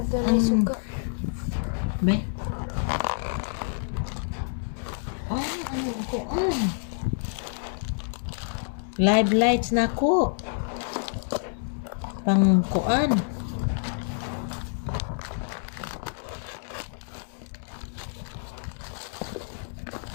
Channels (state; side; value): silent; right; 60 dB below the other